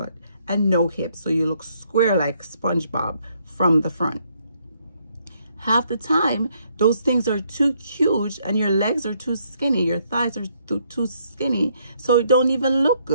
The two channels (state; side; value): inverted; both; correlation -0.71